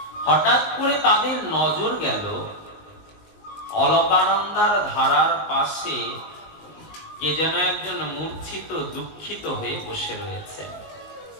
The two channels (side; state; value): right; late; 19 ms